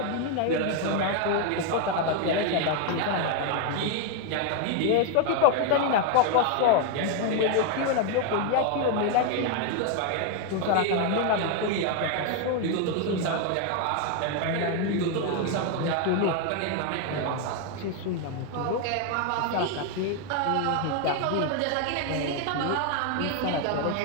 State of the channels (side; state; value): both; different; correlation 0.01